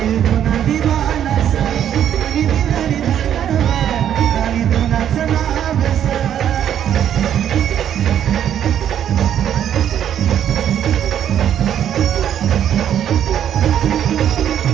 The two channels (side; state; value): left; quieter; 9.9 dB